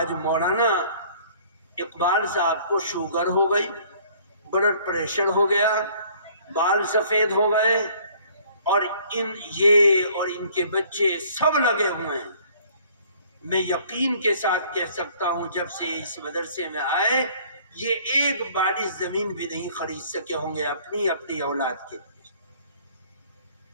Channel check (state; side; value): inverted; both; correlation -0.56